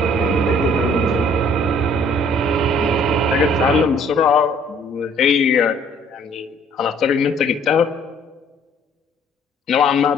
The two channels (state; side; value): normal; both; correlation 0.58